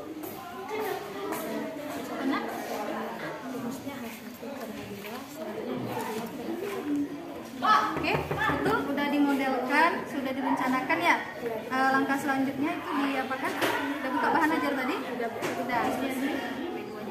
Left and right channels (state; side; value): identical; both; correlation 1.00